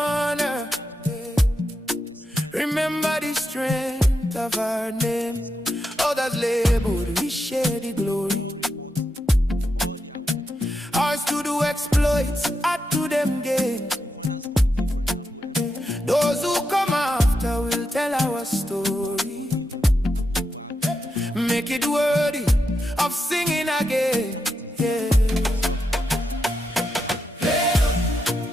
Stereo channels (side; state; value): both; normal; correlation 0.86